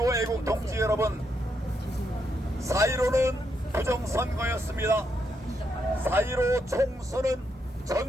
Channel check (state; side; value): normal; both; correlation 0.79